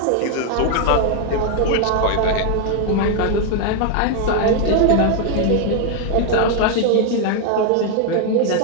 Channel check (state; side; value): different; both; correlation 0.00